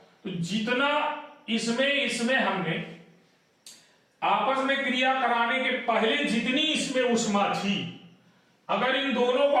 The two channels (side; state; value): both; identical; correlation 1.00